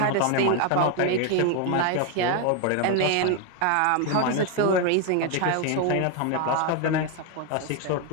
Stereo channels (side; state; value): both; different; correlation 0.01